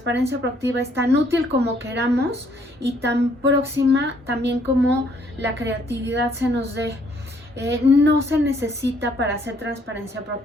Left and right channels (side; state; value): both; normal; correlation 0.66